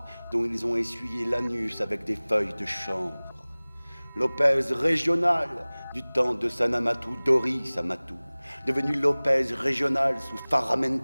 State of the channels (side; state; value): both; inverted; correlation -1.00